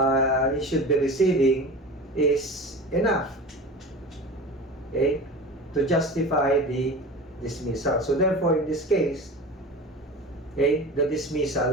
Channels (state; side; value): normal; both; correlation 0.33